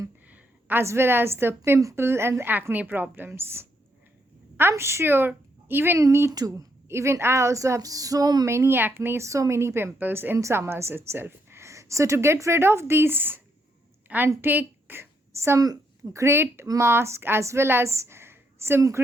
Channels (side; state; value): both; normal; correlation 0.76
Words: as well as the pimple and acne problems. I'm sure even me too. Even I also have so many acne, so many pimples in summers itself. So to get rid of these and take some great mask as well as some